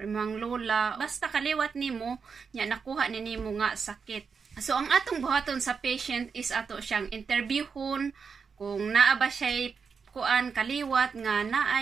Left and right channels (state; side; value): quieter; left; 5.7 dB